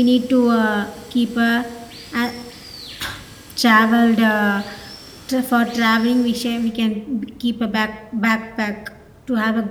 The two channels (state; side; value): identical; both; correlation 1.00